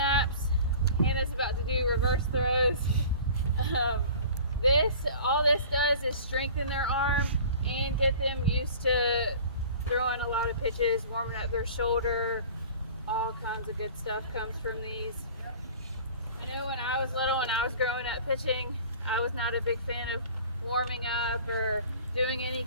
Hannah's about to do reverse throws. All this does is strengthen their arm and get them used to throwing a lot of pitches, warming up their shoulder. All kinds of good stuff comes from these. I know when I was little, when I was growing up pitching, I was not a big fan of warming up or doing any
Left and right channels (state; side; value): inverted; both; correlation -0.43